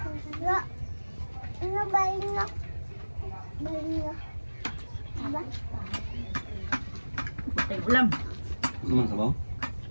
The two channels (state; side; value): inverted; both; correlation -1.00